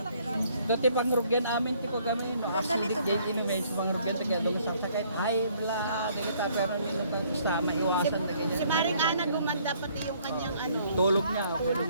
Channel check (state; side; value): inverted; both; correlation -0.63